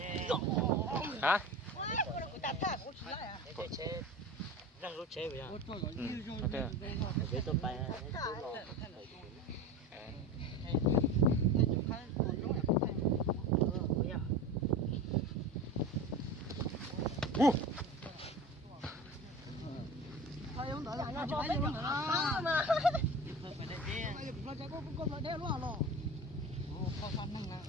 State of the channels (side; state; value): both; normal; correlation 0.31